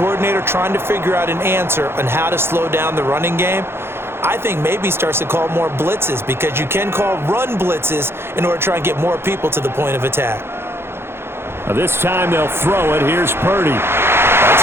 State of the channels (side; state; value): left; late; 0.12 ms